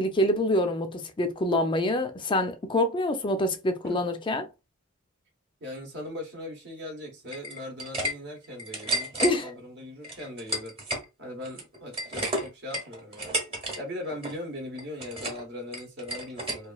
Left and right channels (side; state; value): both; normal; correlation 0.29